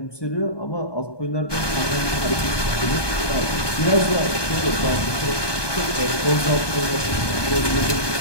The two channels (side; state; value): right; late; 1.2 ms